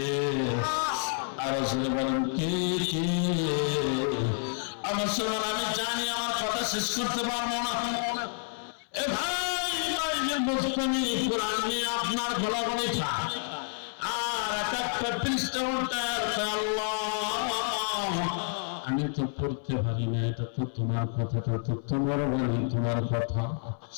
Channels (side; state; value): right; silent; 58 dB below the other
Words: আর বলেন কে কে? আমার সময় আমি জানি আমার কথা শেষ করতে পারবো না। এ ভাই মুসলিম কোরআন নিয়ে আপনার গলাগলি খায় আর একটা পৃষ্ঠা উল্টায় আল্লাহ আমি তো পড়তে পারি না, এটা তো তোমার কথাটা তো তোমার বাণী, তোমার কথা।